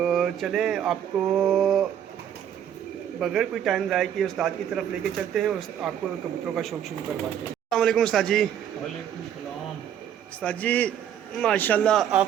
चले आपको बगैर कोई टाइम ज़ाया किए उस्ताद की तरफ लेके चलते हैं और आपको कबूतरों का शौक़ शुरू करवाते हैं। अस्सलाम वालेकुम उस्ताद जी। वालेकुम सलाम। उस्ताद जी माशाल्लाह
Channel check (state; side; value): quieter; left; 9.6 dB